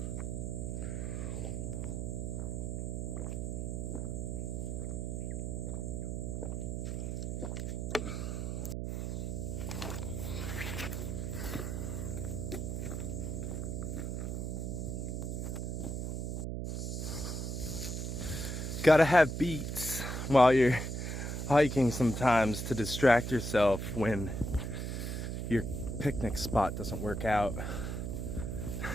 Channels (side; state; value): right; noise; hum, 2 dB below the sound